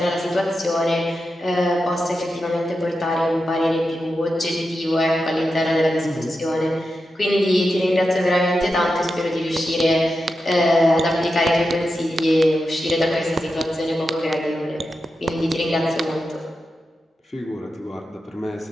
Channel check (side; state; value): both; normal; correlation 0.89